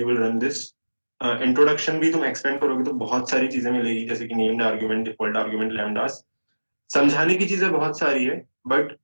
will run this. Introduction भी तुम expand करोगे तो बहुत सारी चीजें मिलेगी, जैसे कि नेम्ड आर्गुमेंट, डिफॉल्ट आर्गुमेंट, लैम्डास। समझाने की चीजें बहुत सारी है but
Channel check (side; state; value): both; inverted; correlation -1.00